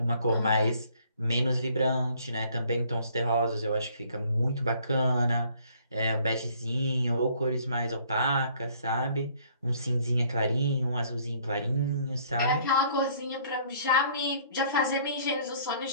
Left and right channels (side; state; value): both; inverted; correlation -0.60